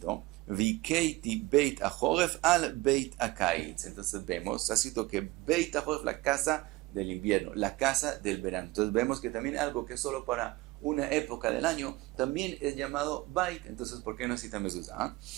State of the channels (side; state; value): left; quieter; 20.1 dB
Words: Vikeiti beit achoref al beit akaitz. Entonces vemos, está escrito que beit achoref, la casa del invierno, la casa del verano. Entonces vemos que también algo que es solo para una época del año también es llamado bait. Entonces, ¿por qué no cita mezuzá?